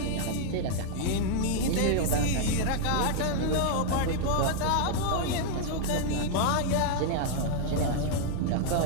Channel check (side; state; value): both; different; correlation -0.01